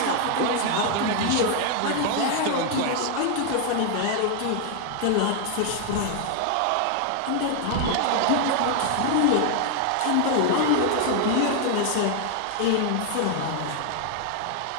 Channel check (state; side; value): different; both; correlation 0.00